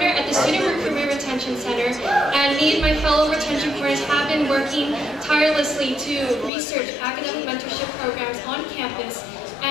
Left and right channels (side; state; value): right; drops out; at 6.5 s